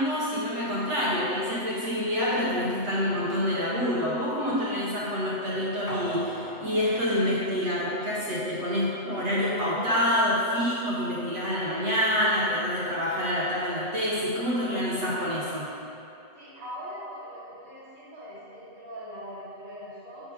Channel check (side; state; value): left; late; 8.1 ms